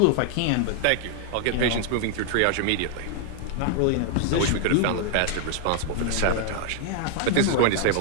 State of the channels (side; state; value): both; different; correlation 0.00